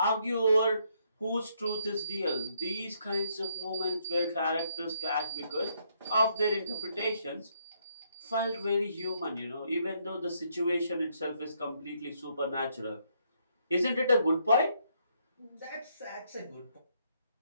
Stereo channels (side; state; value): both; inverted; correlation -0.73